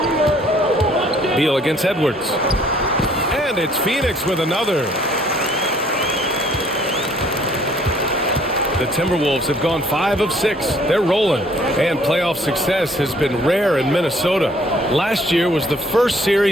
Beal against Edwards. And it's Phoenix with another. The Timberwolves have gone 5 of 6. They're rolling. And playoff success has been rare in Minnesota. Last year was the first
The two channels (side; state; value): both; normal; correlation 0.60